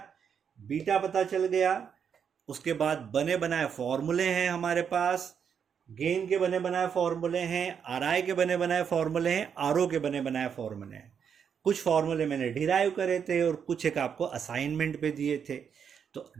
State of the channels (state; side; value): quieter; left; 7.4 dB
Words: बीटा पता चल गया, उसके बाद बने बनाए फॉर्मूले हैं हमारे पास। गेन के बने बनाए फॉर्मूले हैं, आरआई के बने बनाए फॉर्मूले हैं, आरओ के बने बनाए फॉर्मूले हैं। कुछ फॉर्मूले मैंने डिराइव करे थे और कुछ एक आपको असाइनमेंट पे दिए थे। तो